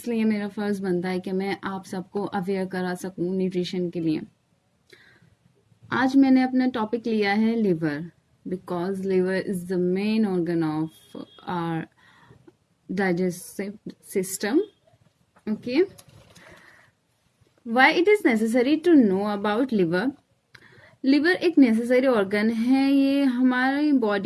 मेरा फ़र्ज़ बनता है कि मैं आप सबको अवेयर करा सकूँ न्यूट्रिशन के लिए. आज मैंने अपना टॉपिक लिया है liver because liver is the main organ of our digestive system. Okay, why it is necessary to know about liver. Liver एक नेसेसरी ऑर्गन है. ये हमारी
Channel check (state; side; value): identical; both; correlation 1.00